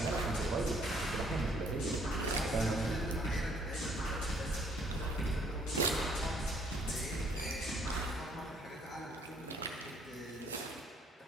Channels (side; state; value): both; normal; correlation 0.63